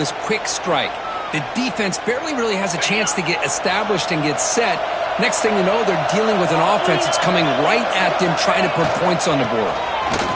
quick strike. The defense barely really has a chance to get established and get set. Next thing you know, they're dealing with an offense that's coming right at them, trying to put points on the board.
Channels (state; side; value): identical; both; correlation 1.00